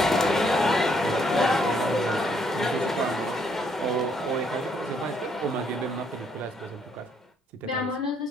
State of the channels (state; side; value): normal; both; correlation 0.70